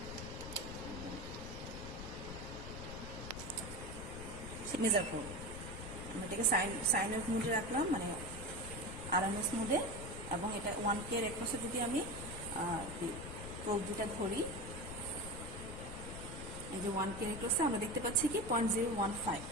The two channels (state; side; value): noise; left; rumble, 9 dB below the sound